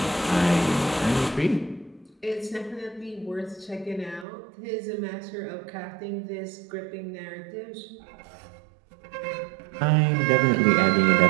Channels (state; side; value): drops out; left; at 4.2 s